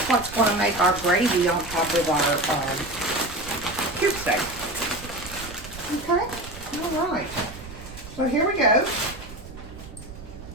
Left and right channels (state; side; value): noise; right; rumble, 15 dB below the sound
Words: what's going to make our gravy on top of our cube steak. Okay, all right. So here we go.